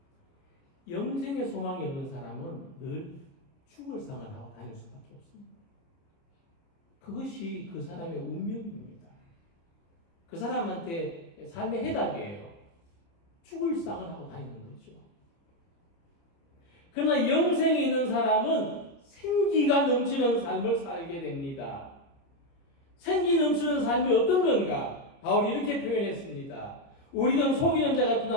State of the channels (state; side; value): late; right; 29 ms